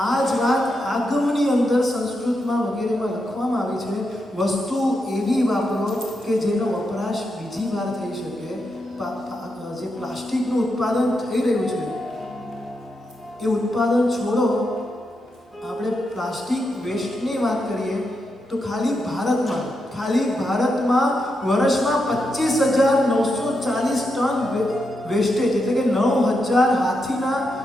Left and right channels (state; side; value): normal; both; correlation 0.84